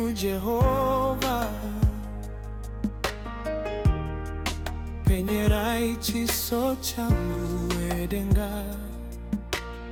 Jehova, penyerai chiso changu edenga.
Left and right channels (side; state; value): both; identical; correlation 1.00